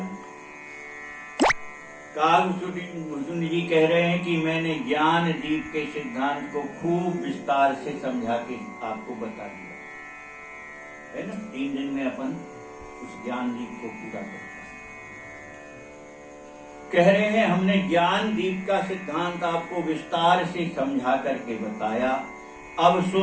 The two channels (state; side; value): identical; both; correlation 1.00